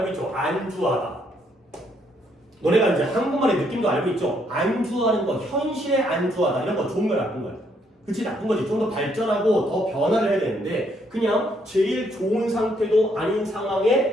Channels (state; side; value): normal; both; correlation 0.71